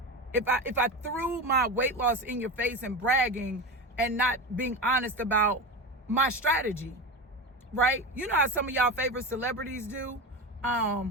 If I threw my weight loss in your face and bragging and not being honest about my strategy. Right? You know how some of y'all favorite celebrities do?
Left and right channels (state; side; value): normal; both; correlation 0.22